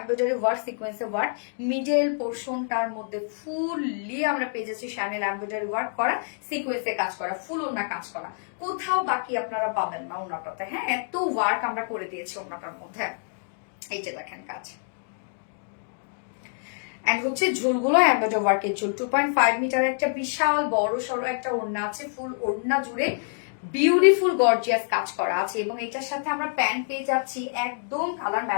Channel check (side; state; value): right; silent; digital silence